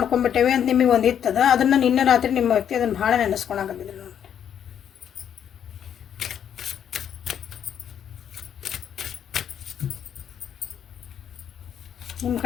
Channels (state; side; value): quieter; right; 9.0 dB